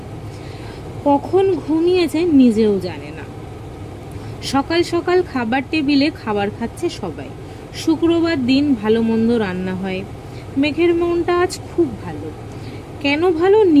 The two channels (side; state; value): both; identical; correlation 1.00